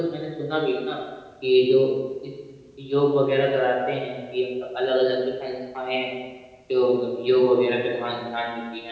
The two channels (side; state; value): both; identical; correlation 1.00